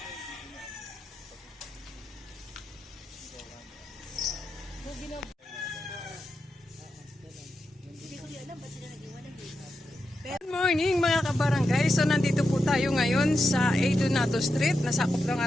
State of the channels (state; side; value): normal; both; correlation 0.88